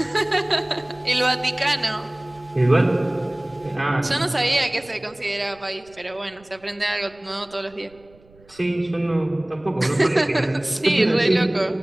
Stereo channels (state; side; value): noise; right; rumble, 28 dB below the sound